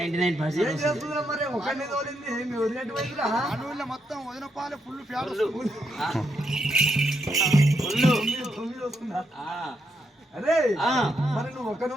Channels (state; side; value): normal; both; correlation 0.80